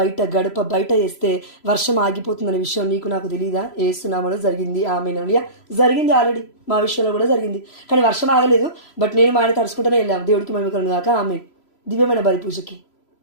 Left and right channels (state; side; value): late; right; 3.0 ms